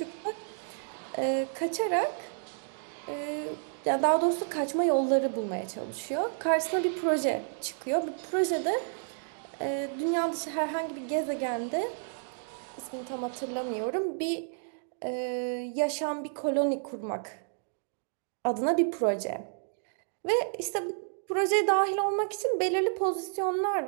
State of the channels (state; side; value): silent; left; digital silence